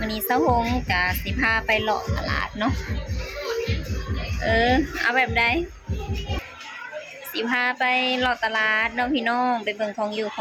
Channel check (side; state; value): both; identical; correlation 1.00